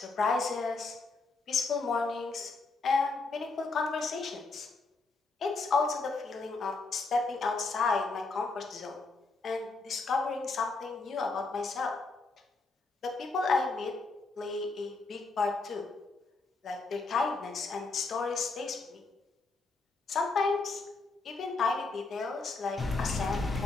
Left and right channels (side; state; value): right; quieter; 3.7 dB